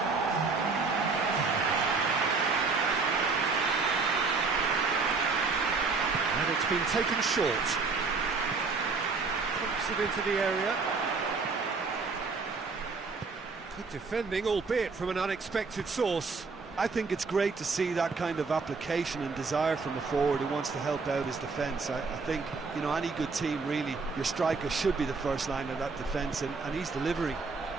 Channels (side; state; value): left; quieter; 4.4 dB